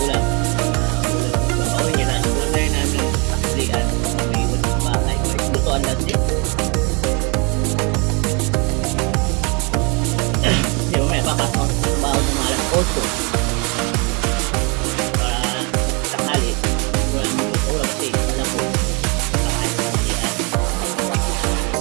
Ulam niya na. Ulam na rin namin paklian. May iwan sa bahay. Lutoan natin. Di ba may papasok sa trabaho ng mga alas 8. Para sakali. Wala mo ito ulam kasi alam ko. Kakain sa paklian.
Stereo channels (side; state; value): left; quieter; 31.8 dB